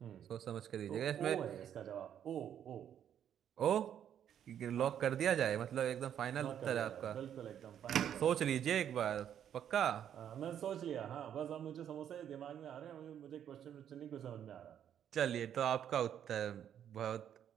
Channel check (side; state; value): left; quieter; 9.6 dB